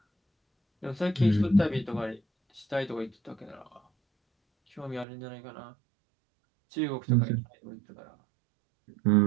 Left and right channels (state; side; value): drops out; left; at 5.1 s